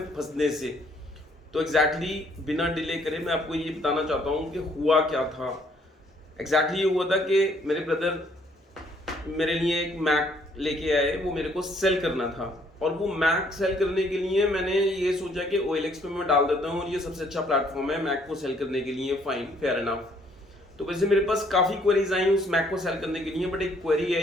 फंसने से। तो एग्जैक्टली बिना डिले करे मैं आपको ये बताना चाहता हूँ कि हुआ क्या था। एग्जैक्टली ये हुआ था कि मेरे ब्रदर मेरे लिए एक मैक लेके आए, वो मेरे को सेल करना था। और वो मैक सेल करने के लिए मैंने ये सोचा कि OLX पे मैं डाल देता हूँ और ये सबसे अच्छा प्लेटफॉर्म है मैक को सेल करने के लिए। Fine, fair enough. तो वैसे मेरे पास काफ़ी क्वेरीज आई उस मैक को सेल करने के लिए, बट एक क्वेरी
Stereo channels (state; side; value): normal; both; correlation 0.65